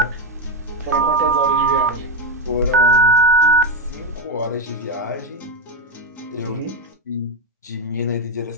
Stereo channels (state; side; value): normal; both; correlation 0.10